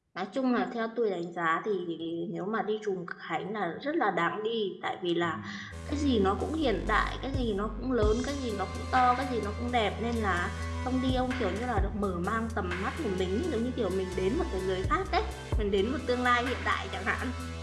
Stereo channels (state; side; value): identical; both; correlation 1.00